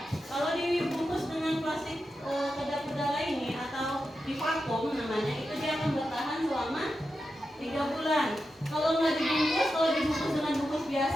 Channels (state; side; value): normal; both; correlation 0.89